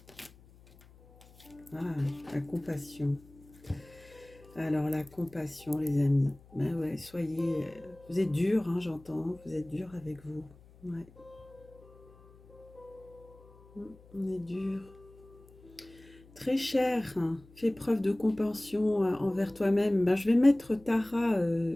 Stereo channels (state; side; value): noise; left; hum, 24 dB below the sound